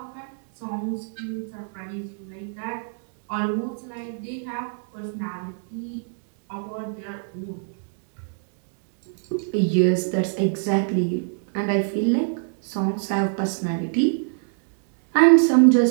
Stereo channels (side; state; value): left; silent; digital silence